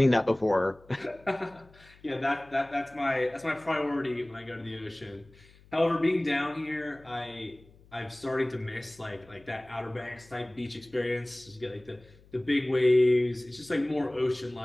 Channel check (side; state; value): left; noise; hum, 26 dB below the sound